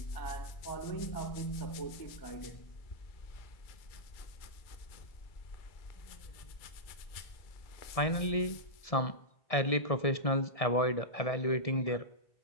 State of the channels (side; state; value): right; late; 1.7 ms